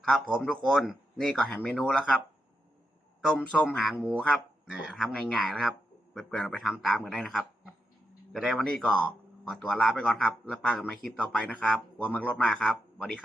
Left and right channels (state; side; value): normal; both; correlation 0.85